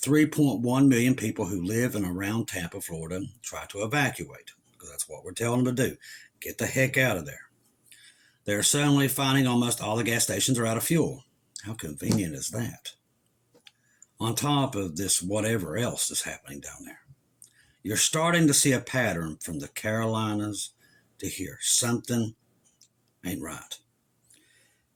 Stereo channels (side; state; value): both; identical; correlation 1.00